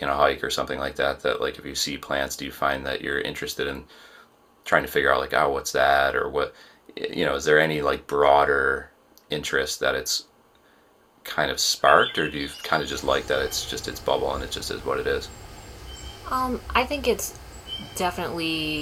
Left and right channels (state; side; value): identical; both; correlation 1.00